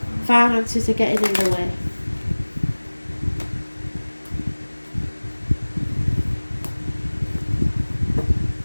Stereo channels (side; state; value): both; inverted; correlation -1.00